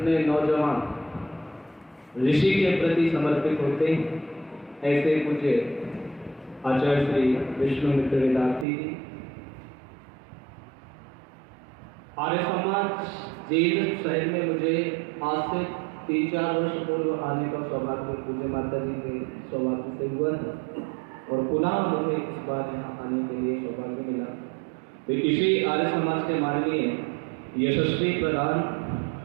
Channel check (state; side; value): drops out; left; at 8.7 s